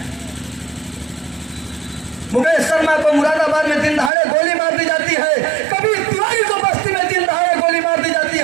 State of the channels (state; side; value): drops out; left; at 4.1 s